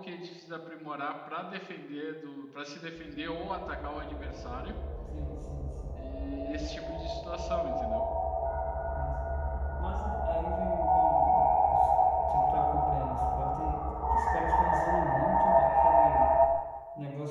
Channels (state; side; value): identical; both; correlation 1.00